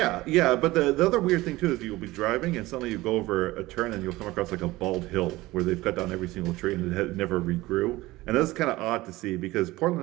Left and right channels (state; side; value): quieter; left; 18.9 dB